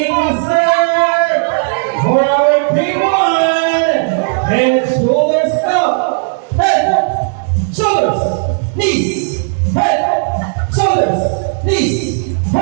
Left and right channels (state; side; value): silent; left; digital silence